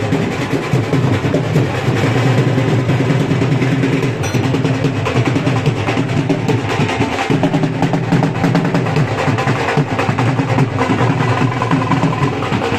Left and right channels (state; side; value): noise; right; hum, 26 dB below the sound